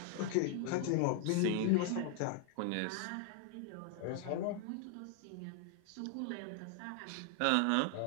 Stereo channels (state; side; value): different; both; correlation 0.00